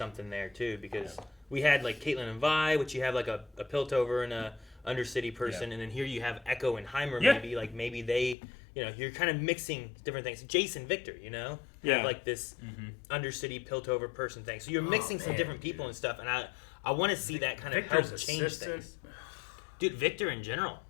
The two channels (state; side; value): drops out; right; at 8.3 s